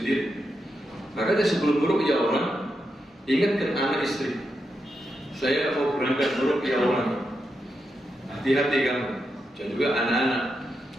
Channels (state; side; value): normal; both; correlation 0.86